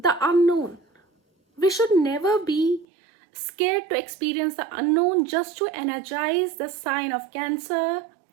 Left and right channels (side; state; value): left; drops out; at 2.9 s